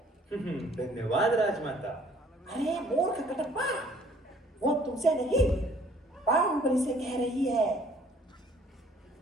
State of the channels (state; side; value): normal; both; correlation 0.58